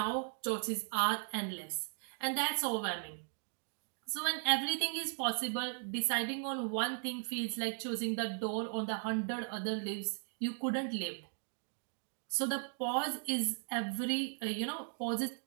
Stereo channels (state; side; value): silent; left; 53 dB below the other